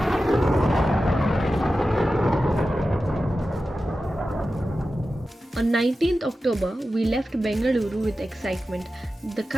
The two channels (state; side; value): normal; both; correlation 0.93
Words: On 19th October, we left Bengaluru with excitement, the